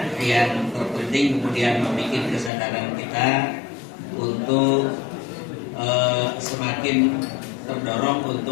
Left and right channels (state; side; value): drops out; right; at 2.5 s